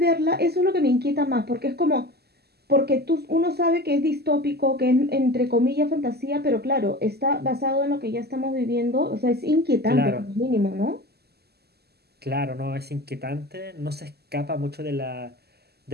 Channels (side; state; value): left; late; 0.46 ms